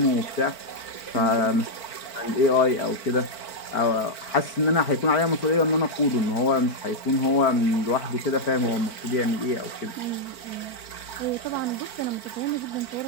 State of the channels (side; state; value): right; late; 4.5 ms